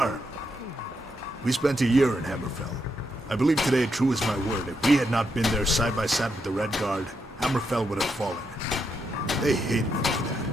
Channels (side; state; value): both; normal; correlation 0.81